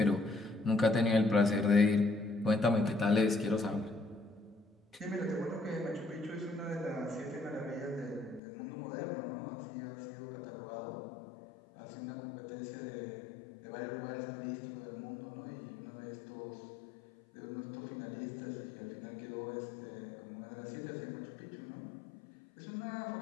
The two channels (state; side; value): drops out; right; at 8.4 s